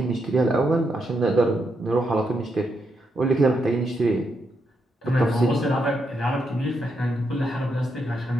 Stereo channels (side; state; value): both; normal; correlation 0.81